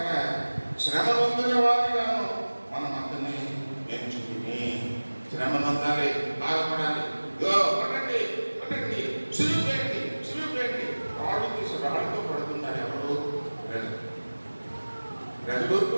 శ్రమ పొందిన వారిగాను మనం అందరినీ ఎంచుకుని శ్రమ పొందాలి, బాధపడాలి. పడండి సులువు చేయండి. రాళ్ళు తీసి రాళ్ళతో పడుతున్నారు. ఎవరు? ప్రజలు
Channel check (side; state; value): both; inverted; correlation -1.00